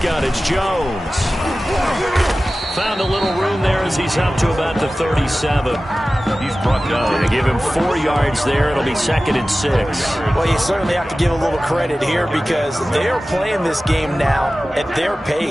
it's Jones. Found a little room there as he's up to about the 37. He's brought down. They give him 4 yards there. It'll be 2nd and 6. Well, you certainly have to give a little credit here because they are playing this game now at their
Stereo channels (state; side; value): normal; both; correlation 0.96